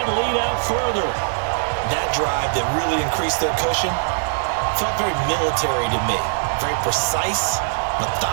lead out further. That drive that really increased their cushion felt very military to me. Very precise,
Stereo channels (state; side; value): silent; left; digital silence